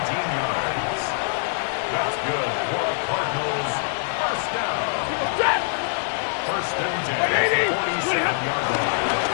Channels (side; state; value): right; silent; 57 dB below the other